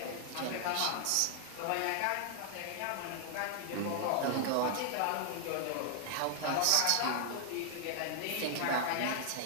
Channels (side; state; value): both; different; correlation 0.00